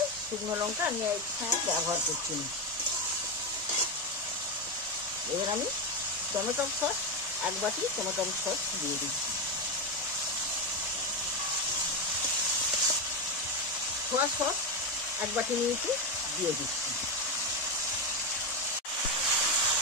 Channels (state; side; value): normal; both; correlation 0.11